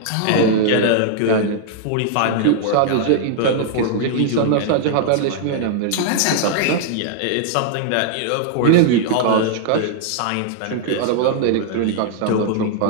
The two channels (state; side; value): different; both; correlation -0.01